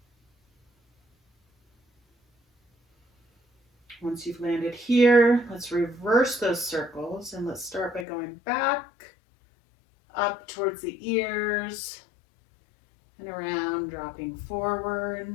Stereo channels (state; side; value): drops out; right; at 8.1 s